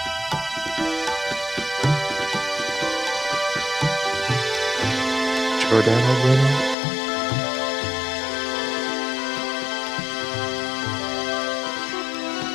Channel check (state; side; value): drops out; right; at 6.8 s